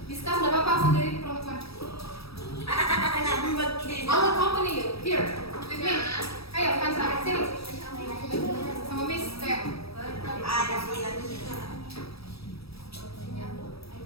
Discuss nggak apa-apa sendiri perempuan. I'll accompany you here with me. Ayo, Kansa, sini. Sama Miss Teo. Ada sih lagi.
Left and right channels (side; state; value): right; late; 0.77 ms